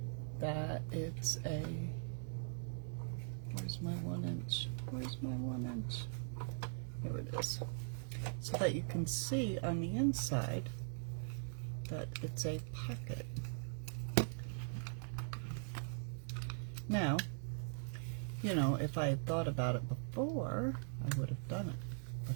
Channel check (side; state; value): left; silent; digital silence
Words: that it's a, where's my 1 inch? Where's my 1 inch? Here it is. So that you can see on the inside that it's a pocket. Now, you know, if I had thought about it before, I would have done it,